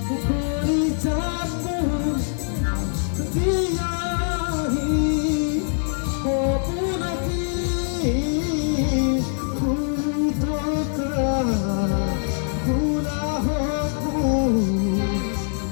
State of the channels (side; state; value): right; silent; digital silence